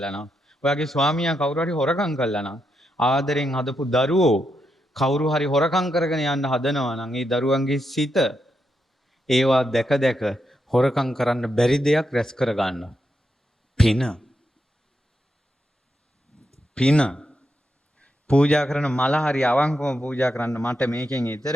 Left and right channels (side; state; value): both; normal; correlation 0.83